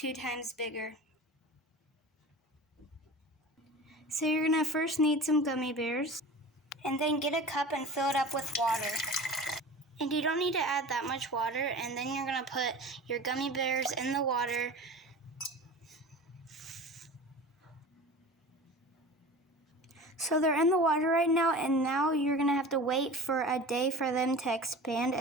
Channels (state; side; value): normal; both; correlation 0.36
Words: times bigger. So you're going to first need some gummy bears, and then get a cup and fill it up with water. And you don't need to add that much water, and then you're going to put your gummy bears in the water. So they're in the water right now, and now you're going to have to wait for a day for them to expand,